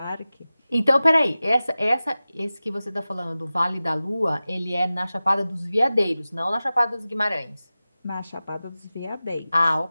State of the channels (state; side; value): inverted; both; correlation -0.96